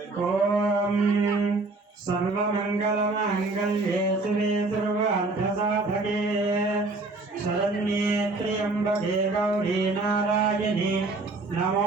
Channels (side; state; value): left; quieter; 3.3 dB